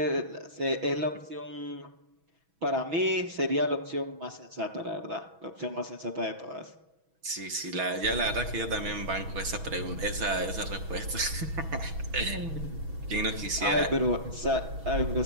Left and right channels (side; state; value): left; late; 6.2 ms